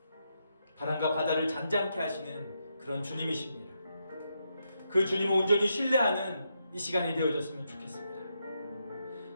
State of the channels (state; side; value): inverted; both; correlation -0.82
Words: 바람과 바다를 잔잔케 하시는 그런 주님이십니다. 그 주님을 온전히 신뢰하는 이 시간이 되어졌으면 좋겠습니다.